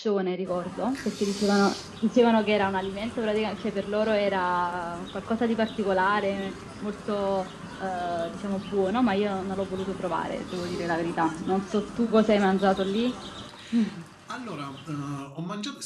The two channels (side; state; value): both; identical; correlation 1.00